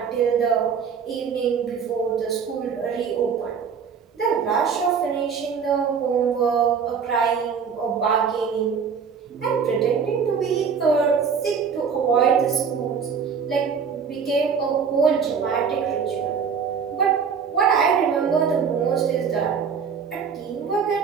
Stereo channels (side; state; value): left; quieter; 6.4 dB